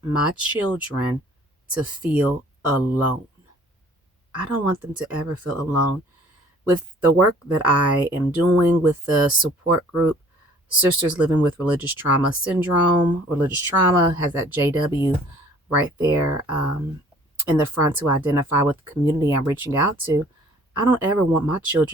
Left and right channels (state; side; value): normal; both; correlation 0.54